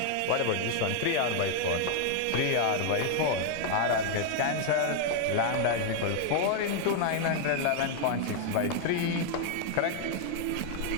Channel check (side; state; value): both; different; correlation 0.00